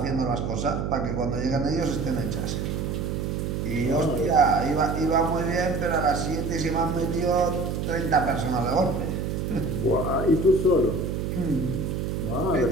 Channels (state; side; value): noise; right; hum, 2 dB below the sound